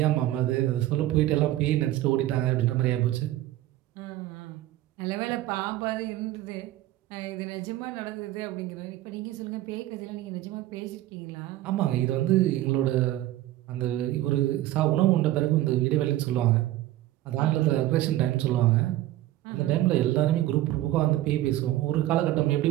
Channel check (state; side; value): quieter; left; 15.0 dB